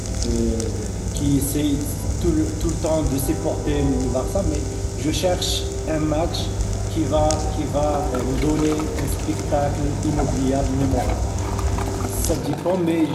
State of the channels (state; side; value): identical; both; correlation 1.00